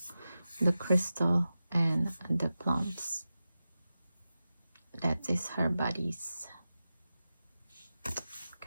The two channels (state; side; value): inverted; both; correlation -0.93